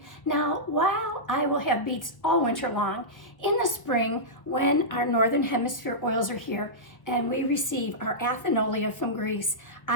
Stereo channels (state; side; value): late; right; 1.2 ms